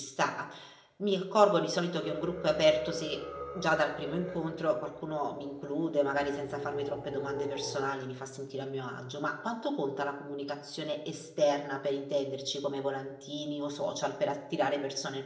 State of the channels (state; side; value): identical; both; correlation 1.00